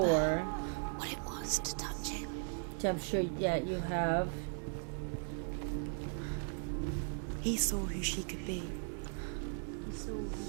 What it was to touch him. Which I'm sure, yeah, you have. He saw who she could be. He saw who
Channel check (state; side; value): silent; left; 53 dB below the other